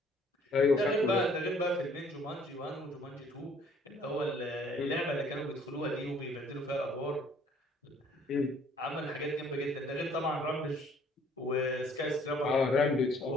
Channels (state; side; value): normal; both; correlation 0.60